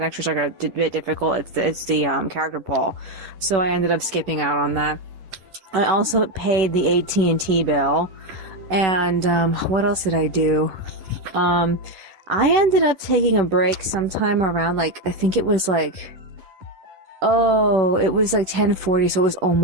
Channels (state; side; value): late; left; 11 ms